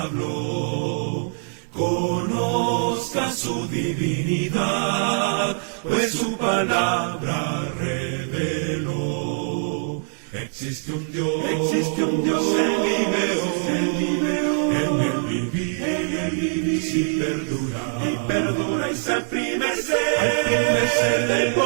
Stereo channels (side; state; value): left; silent; 61 dB below the other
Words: Conozca su divinidad, pues su palabra reveló. Existe un Dios en mi veo, en el vivir, si perdura y se al primer ser al primer ser del